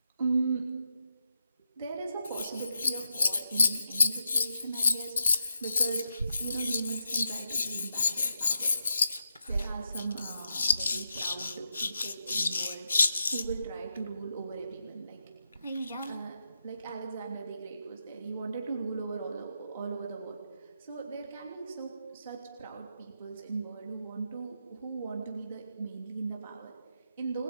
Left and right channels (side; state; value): both; inverted; correlation -0.84